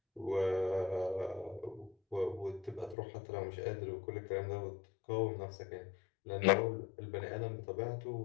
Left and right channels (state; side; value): drops out; right; at 3.0 s